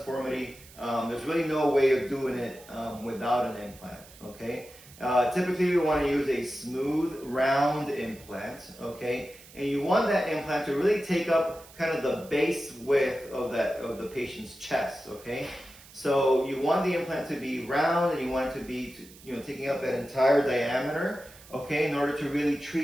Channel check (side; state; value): right; noise; hiss, 21 dB below the sound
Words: there's really no way of doing it without an implant. Okay. Typically, you want to use a smooth, round implant, okay? And you want that implant to really take up kind of the base width of the patient's chest, okay? So you want the implant to be round, and you want it to be, taking up that entire diameter, okay, in order to really